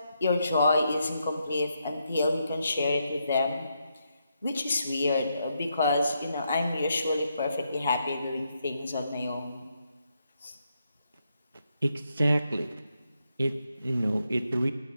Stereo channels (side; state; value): both; inverted; correlation -0.81